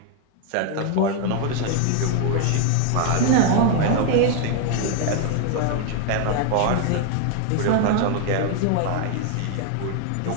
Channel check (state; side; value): different; both; correlation 0.00